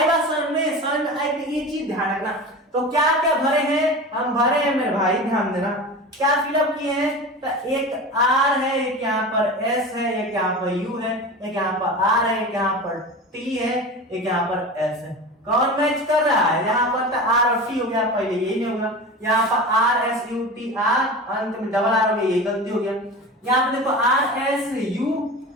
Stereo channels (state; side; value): normal; both; correlation 0.31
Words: बात समझ में आई, ये चीज ध्यान रखना। तो क्या क्या भरे हैं, हम भरे हैं मेरे भाई, ध्यान देना, क्या फिलअप किए हैं, तो एक आर है, एक यहाँ पर एस है, एक यहाँ पर यू है, एक यहाँ पर आर है, एक यहाँ पर टी है, एक यहाँ पर एस है। कौन मैच कर रहा है, यहाँ पर तो आर और टी हो गया, पहले यही नहीं होगा, यहाँ पर R S U T R, अंत में डबल आर हो गया, यही गलती हो गया। यहाँ पर देखो आर एस यू